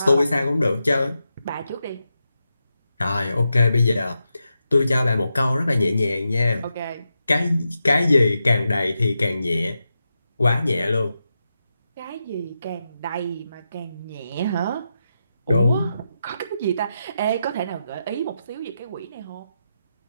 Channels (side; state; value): both; inverted; correlation -0.87